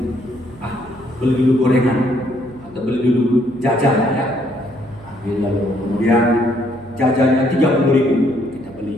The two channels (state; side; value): noise; right; hum, 22 dB below the sound